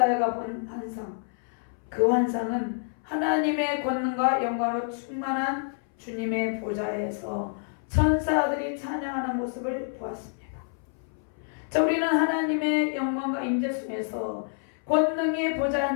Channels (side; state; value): right; silent; 60 dB below the other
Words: 본 환상. 그 환상은 하나님의 권능과 영광으로 충만한 주님의 보좌에서 천사들이 찬양하는 모습을 보았습니다. 자, 우리는 하나님의 영광과 임재 속에서 권능의 보좌에